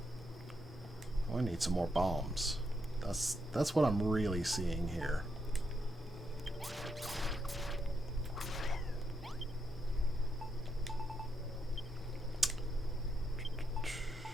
Oh, I need some more bombs. That's what I'm really seeing here.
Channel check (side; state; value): both; normal; correlation 0.81